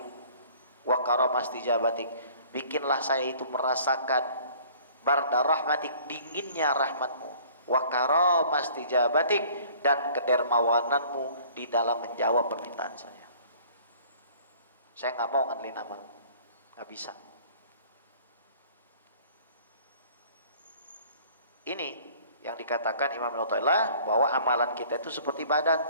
wa karamastijabatik, bikinlah saya itu merasakan barda rahmatik, dinginnya rahmatmu, wa karamastijabatik, dan kedermawananmu di dalam menjawab permintaan saya. Saya nggak mau ngandelin amal, nggak bisa. Ini yang dikatakan Imam Al-Mu'tazilah bahwa amalan kita itu seperti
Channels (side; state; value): both; inverted; correlation -0.52